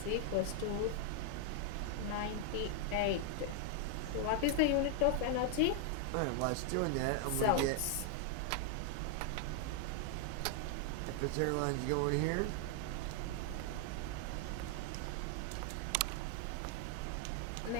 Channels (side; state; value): both; different; correlation 0.00